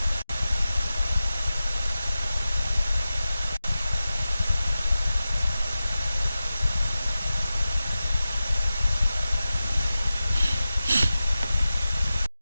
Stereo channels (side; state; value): both; inverted; correlation -0.94